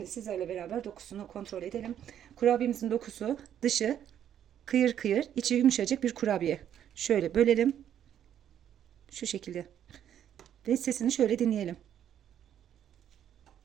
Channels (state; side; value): quieter; left; 10.0 dB